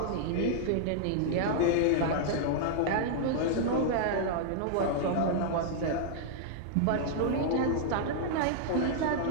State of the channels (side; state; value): both; different; correlation -0.01